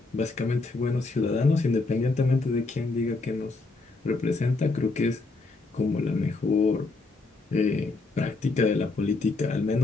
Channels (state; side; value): quieter; right; 3.6 dB